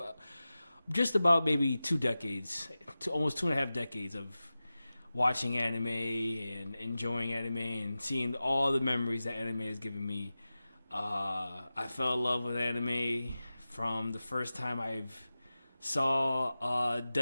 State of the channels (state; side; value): inverted; both; correlation -0.95